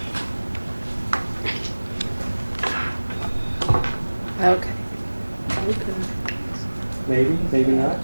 Okay. Maybe not.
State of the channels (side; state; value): both; inverted; correlation -1.00